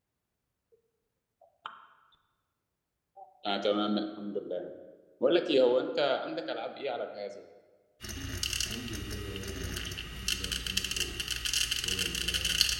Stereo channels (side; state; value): both; identical; correlation 1.00